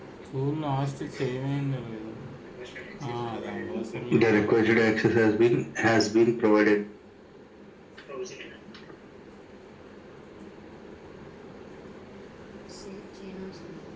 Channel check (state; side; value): identical; both; correlation 1.00